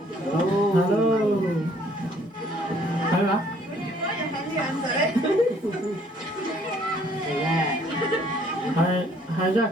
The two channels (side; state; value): both; normal; correlation 0.62